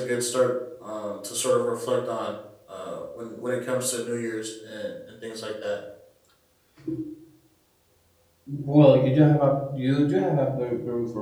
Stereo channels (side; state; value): both; identical; correlation 1.00